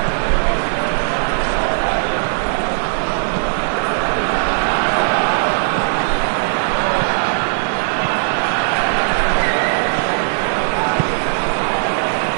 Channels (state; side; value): silent; left; digital silence